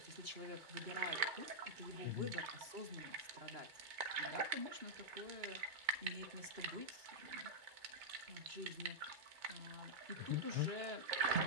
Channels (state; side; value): late; left; 2.2 ms